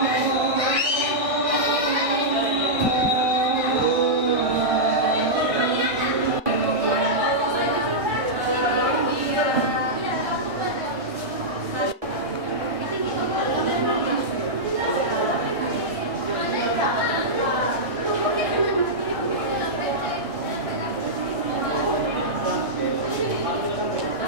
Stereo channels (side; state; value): left; late; 1.6 ms